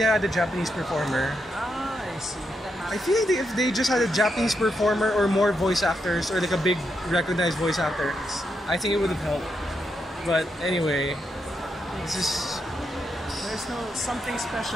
had a Japanese performer. Ah, I see. I feel like if they just had a Japanese performer or more voice actors or like a big recognized voice actor, I think it would have helped. But anyway, this is... There's no something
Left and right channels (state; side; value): normal; both; correlation 0.83